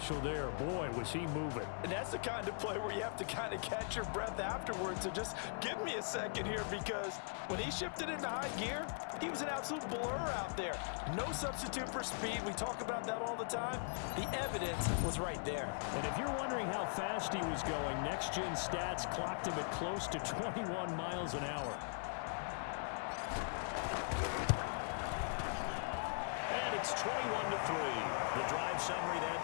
there. Boy, was he moving. And that's the kind of play where you have to kind of catch your breath afterwards. So just give me a second here, because when he shifted into high gear, he was an absolute blur out there. No substitute for speed. We talk about that all the time. The evidence was right there. And if you're wondering how fast he was going, next-gen stats clocked him at close to 21 miles an hour. It's 21-3. The drive summary that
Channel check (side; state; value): right; silent; 51 dB below the other